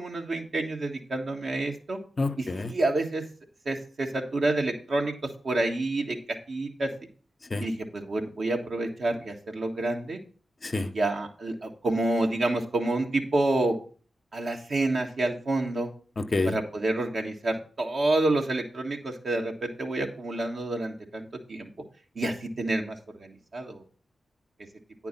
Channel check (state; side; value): normal; both; correlation 0.90